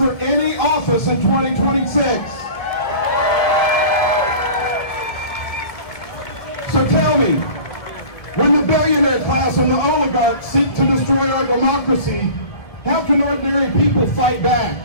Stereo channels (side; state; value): right; late; 1.7 ms